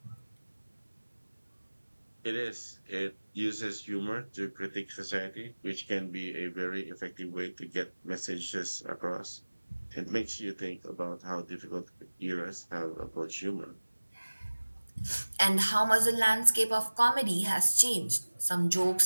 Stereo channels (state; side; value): inverted; both; correlation -1.00